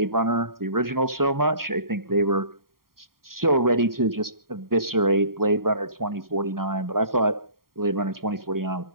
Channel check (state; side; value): late; left; 0.93 ms